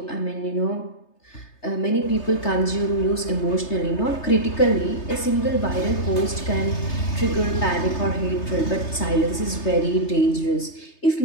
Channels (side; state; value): right; late; 3.3 ms